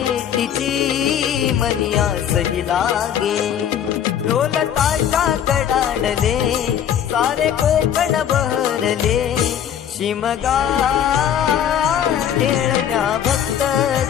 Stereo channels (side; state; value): right; quieter; 9.5 dB